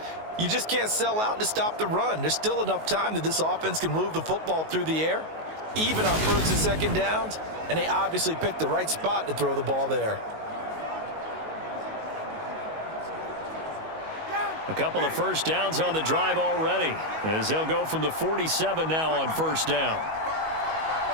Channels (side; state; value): left; late; 19 ms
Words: you just can't sell out to stop the run. There's still enough time that this offense can move the football through the air, even on first and second downs, and they obviously picked the right spot to throw the ball there. A couple of first downs on the drive already, as they'll go from the 47 now on first down.